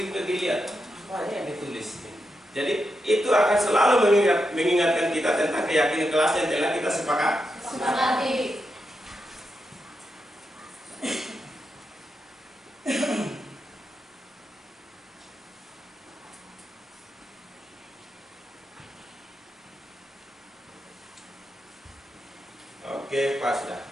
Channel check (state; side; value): normal; both; correlation 0.86